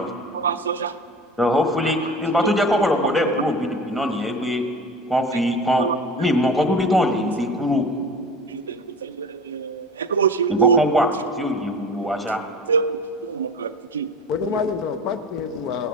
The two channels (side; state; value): both; normal; correlation 0.36